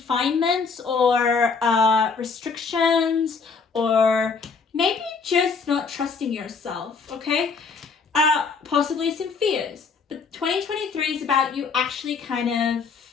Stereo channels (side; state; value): right; quieter; 5.0 dB